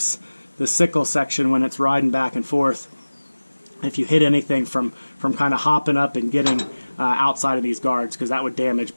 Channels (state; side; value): inverted; both; correlation -1.00